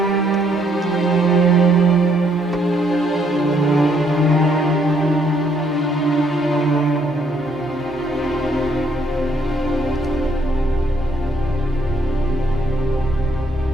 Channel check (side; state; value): both; normal; correlation 0.69